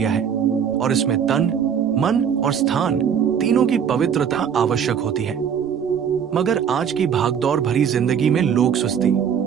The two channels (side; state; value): left; quieter; 7.8 dB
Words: है और इसमें तन, मन और स्थान तीनों की पवित्रता आवश्यक होती है। मगर आज की भागदौड़ भरी जिंदगी में लोग सुस्ती,